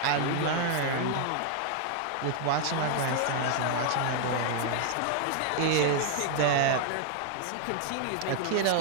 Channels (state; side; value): different; both; correlation 0.00